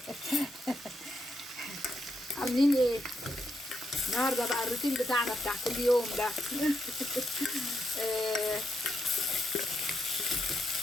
عاملين ايه النهارده بقى؟ الروتين بتاعنا بتاع كل يوم ده.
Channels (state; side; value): normal; both; correlation 0.82